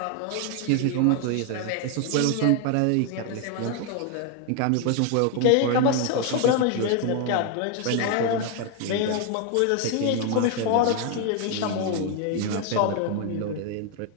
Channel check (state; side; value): different; both; correlation 0.01